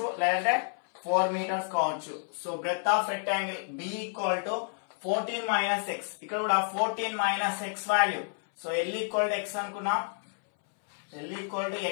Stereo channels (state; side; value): silent; right; 58 dB below the other